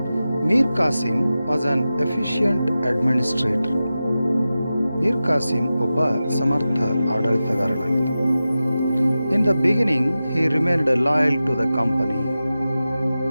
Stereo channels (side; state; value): both; inverted; correlation -0.94